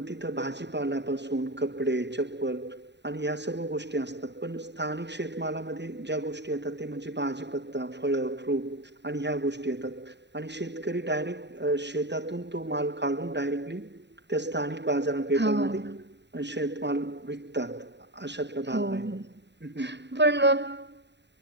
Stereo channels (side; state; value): left; late; 0.51 ms